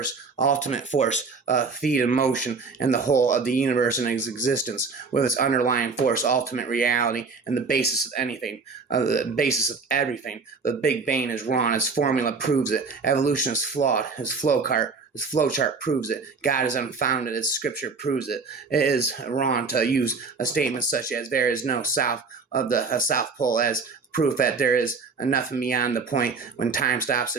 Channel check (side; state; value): left; quieter; 4.7 dB